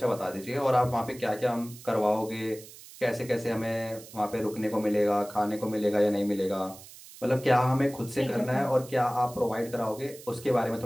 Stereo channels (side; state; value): right; noise; hiss, 18 dB below the sound